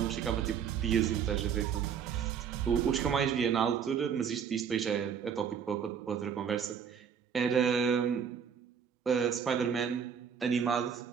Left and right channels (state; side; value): quieter; left; 7.4 dB